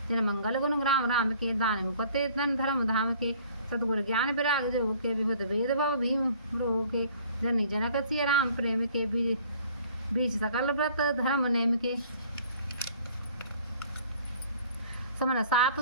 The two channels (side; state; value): both; inverted; correlation -0.54